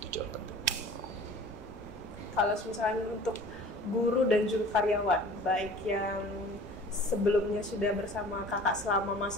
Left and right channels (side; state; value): both; normal; correlation 0.45